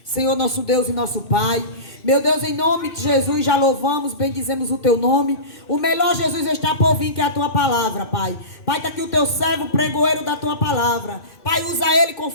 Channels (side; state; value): right; late; 2.6 ms